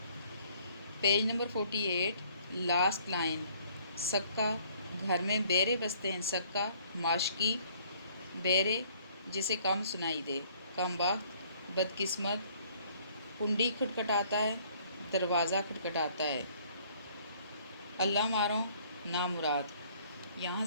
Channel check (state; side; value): inverted; both; correlation -0.60